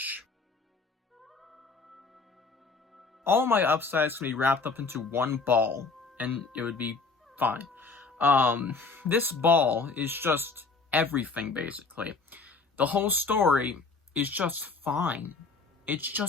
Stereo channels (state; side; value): quieter; right; 4.2 dB